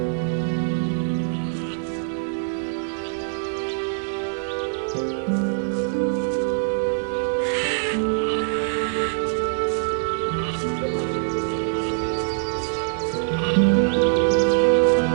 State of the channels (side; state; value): left; silent; digital silence